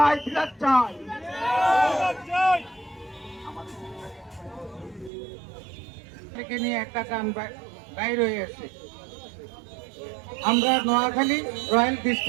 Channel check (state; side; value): drops out; left; at 5.1 s